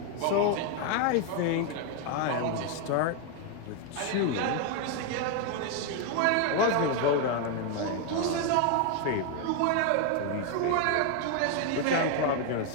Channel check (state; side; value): different; both; correlation 0.01